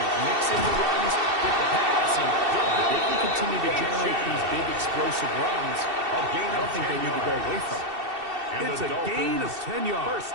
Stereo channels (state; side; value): late; left; 2.7 ms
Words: mix in the runs with the pass, and if they can continue to generate these big explosive runs, I don't think they need to go away from it. It's a gain of 10 yards.